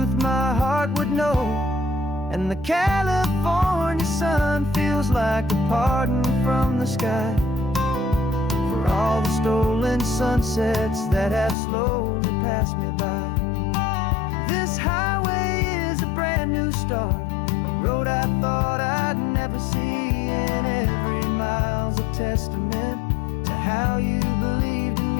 my heart would know. And the California sun feels like a pardon from the sky for all the stolen sunsets that have slowly passed me by. This highway is a brand new start, a road I thought I'd never see, and every mile's a testament to how you believed in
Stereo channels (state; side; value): drops out; right; at 11.6 s